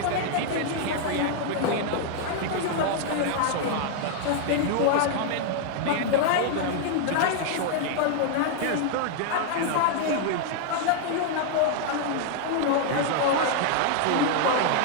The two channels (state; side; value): different; both; correlation 0.00